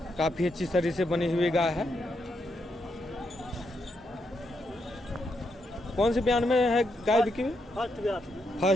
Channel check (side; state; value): both; normal; correlation 0.81